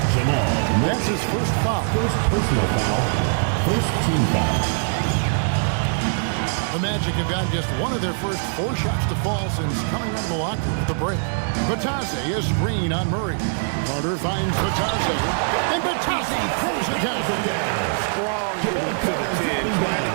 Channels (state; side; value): silent; left; digital silence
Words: That's his first foul. First personal foul. First team foul. The Magic have gotten just one of their first 4 shots to fall since coming out of the locker room at the break. Vitadze a screen on Murray. Carter finds Vitadze, and Vitadze throws it down. Strong move to the 10, trying to